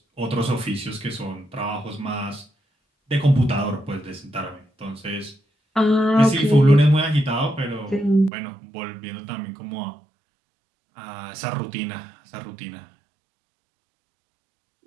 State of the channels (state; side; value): drops out; left; at 8.3 s